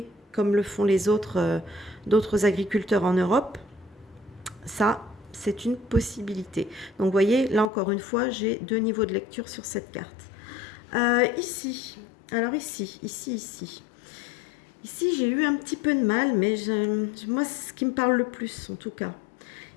comme le font les autres, d'autres agriculteurs en Europe? Ça, c'est une possibilité. Donc, vous voyez, là encore une fois, j'ai 2 niveaux de lecture sur cette carte. Ici, alors ici. Ici, j'ai eu un petit peu de mal, mais moi, c'est ce qui me parle le plus, en tout cas.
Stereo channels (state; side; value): drops out; right; at 7.7 s